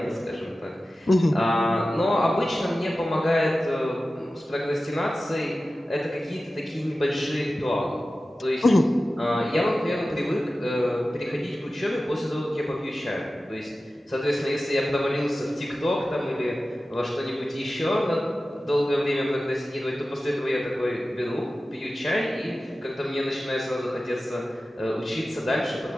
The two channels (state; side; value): normal; both; correlation 0.95